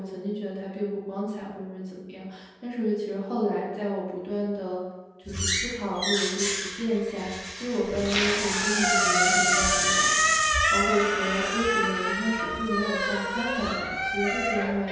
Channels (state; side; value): identical; both; correlation 1.00